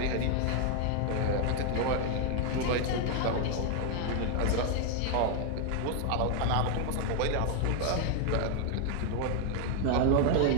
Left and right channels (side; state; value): both; different; correlation 0.00